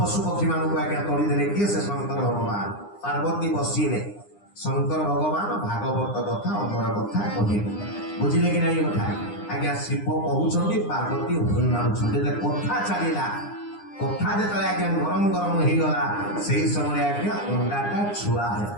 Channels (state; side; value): late; right; 9.8 ms